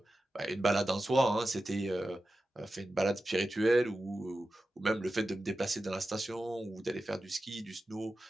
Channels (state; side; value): normal; both; correlation 0.93